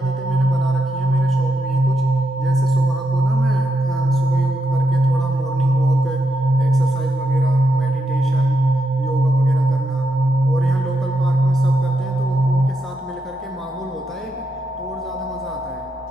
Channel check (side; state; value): both; normal; correlation 0.83